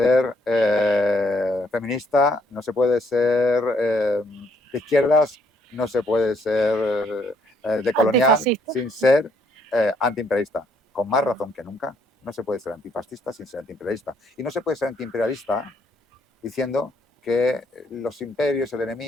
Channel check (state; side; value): normal; both; correlation 0.69